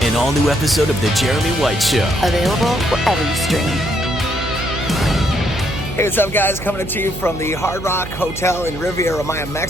An all-new episode of The Jeremy White Show. Available wherever you stream. Hey, what's up guys? Coming to you from the Hard Rock Hotel in Riviera Maya,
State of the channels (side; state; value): right; noise; hum, 11 dB below the sound